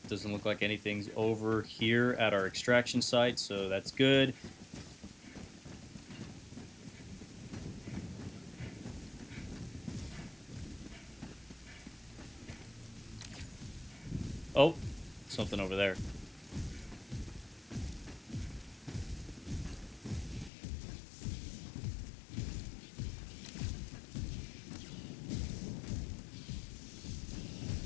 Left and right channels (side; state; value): right; drops out; at 20.5 s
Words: Doesn't look like anything's over here at our extraction site, so that's good. Oh, something over there.